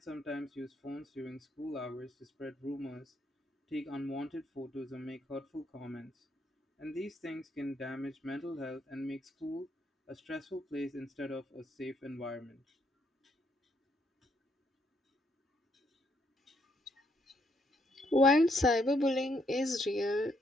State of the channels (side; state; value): both; normal; correlation 0.73